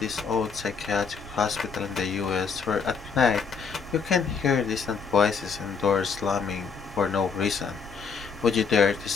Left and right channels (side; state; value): right; quieter; 5.7 dB